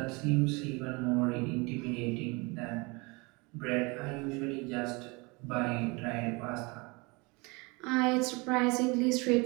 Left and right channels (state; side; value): quieter; left; 27.4 dB